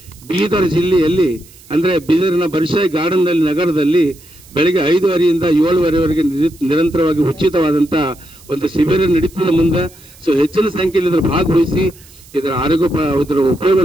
ಬೀದರ್ ಜಿಲ್ಲೆಯಲ್ಲಿ ಅಂದರೆ ಬೀದರಿನ ಬರ್ಷಾಯಿ ಗಾರ್ಡನ್ ನಗರದಲ್ಲಿ ಬೆಳಗ್ಗೆ 5:30ರಿಂದ 7:30ವರೆಗೆ ನಿರಂತರವಾಗಿ ಉಚಿತವಾದಂಥ ಒಂದು ಶಿಬಿರ ನಡೀತದೆ ಮುಂದೆ. ಸೊ ಹೆಚ್ಚಿನ ಸಂಖ್ಯೆಯಲ್ಲಿ ಇದರ ಭಾಗವಹಿಸಿ ಇದರ ಇದರ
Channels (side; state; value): right; noise; hiss, 24 dB below the sound